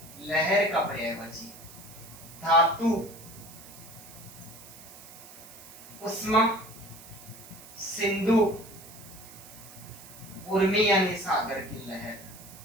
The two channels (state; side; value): noise; right; hiss, 17 dB below the sound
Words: लहर का पर्यायवाची, धातु उष्मा, सिंधु उर्मी यानी सागर की लहर,